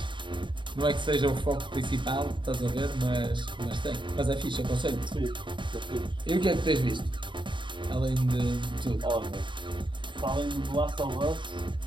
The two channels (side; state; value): left; late; 0.23 ms